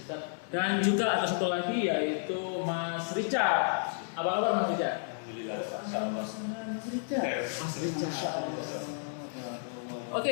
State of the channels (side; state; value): right; silent; 57 dB below the other